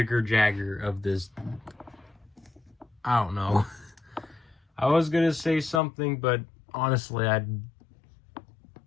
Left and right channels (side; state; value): right; drops out; at 5.8 s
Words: of this. I don't know. I was gonna say something, but honestly I